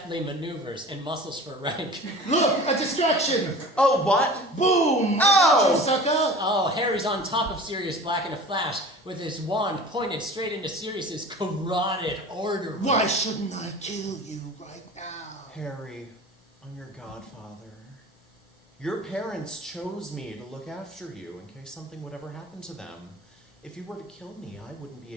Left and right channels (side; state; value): both; normal; correlation 0.39